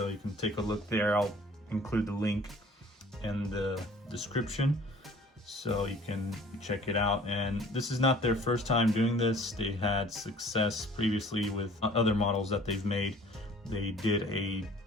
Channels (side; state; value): both; normal; correlation 0.50